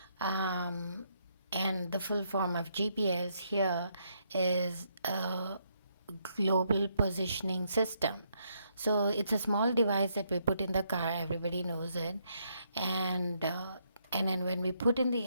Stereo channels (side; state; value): both; inverted; correlation -0.75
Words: Um, and the full form of GPS here is global positioning system. So it's a small device that we put in the car. Everybody knows it, and then when we put in the